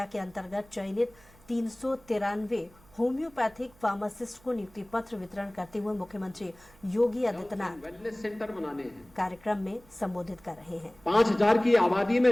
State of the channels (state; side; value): noise; right; hum, 26 dB below the sound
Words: के अंतर्गत चयनित 393 होम्योपैथिक फार्मासिस्ट को नियुक्ति पत्र वितरण करते हुए मुख्यमंत्री योगी आदित्यनाथ वेलनेस सेंटर बनाने हैं। कार्यक्रम में संबोधित कर रहे हैं। 5000 की आबादी